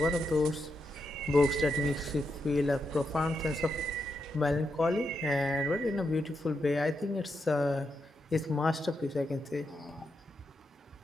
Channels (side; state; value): both; normal; correlation 0.84